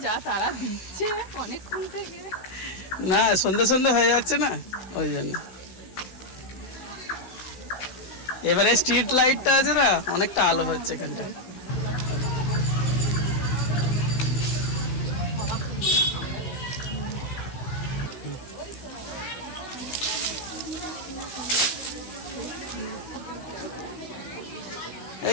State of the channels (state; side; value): late; right; 16 ms